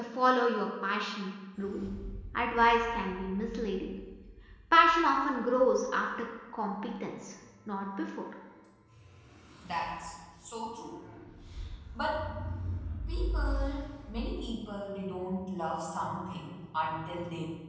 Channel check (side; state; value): both; identical; correlation 1.00